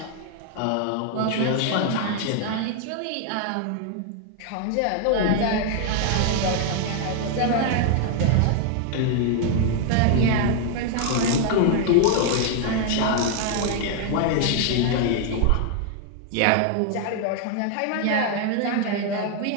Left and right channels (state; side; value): different; both; correlation 0.00